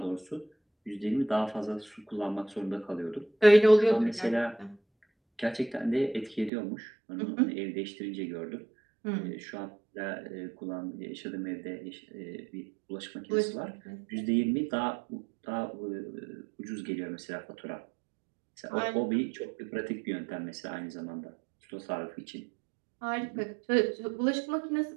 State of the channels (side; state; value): left; drops out; at 6.5 s